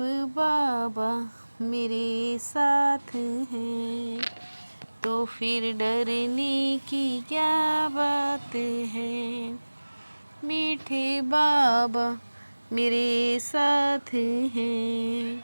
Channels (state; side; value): inverted; both; correlation -1.00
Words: बाबा मेरे साथ हैं, तो फिर डरने की क्या बात है। मीठे बाबा मेरे साथ